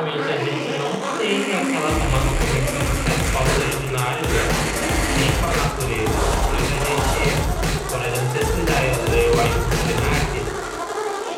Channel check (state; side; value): identical; both; correlation 1.00